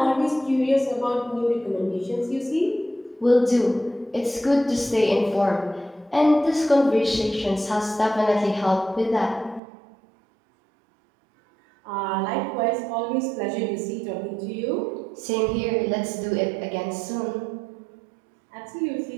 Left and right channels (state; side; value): drops out; left; at 9.6 s